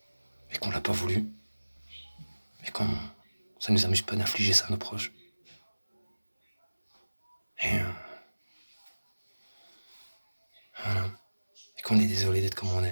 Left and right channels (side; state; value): both; inverted; correlation -1.00